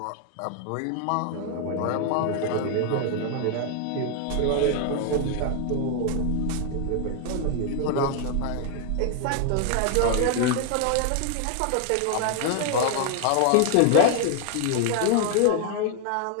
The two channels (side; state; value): both; different; correlation 0.00